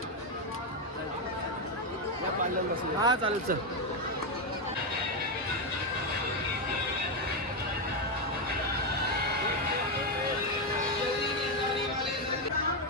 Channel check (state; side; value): normal; both; correlation 0.06